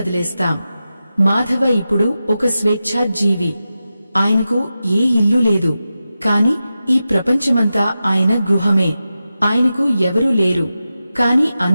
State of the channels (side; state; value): both; inverted; correlation -0.92